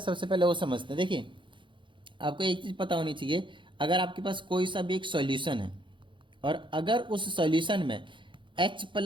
सबसे पहले वो समझते हैं। देखिए, आपको एक चीज़ पता होनी चाहिए, अगर आपके पास कोई सा भी एक सॉल्यूशन है और अगर उस सॉल्यूशन में H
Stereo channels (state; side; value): late; left; 0.24 ms